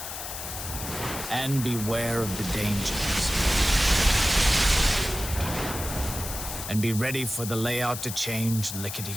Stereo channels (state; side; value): noise; left; hiss, 7 dB below the sound